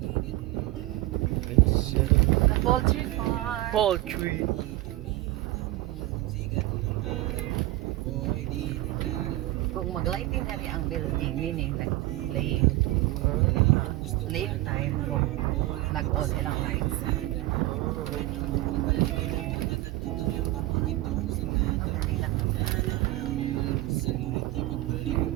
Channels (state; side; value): quieter; left; 17.6 dB